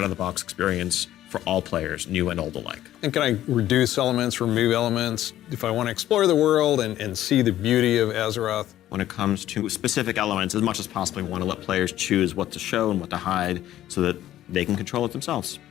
experience for all players, new and old alike. and can I reduce elements, remove elements, if I want to explore the world and see the beauty of Azeroth? When it comes to specific elements, as much as possible, we want to let players choose what to show and what to hide so that they can control it themselves.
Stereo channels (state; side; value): quieter; right; 13.1 dB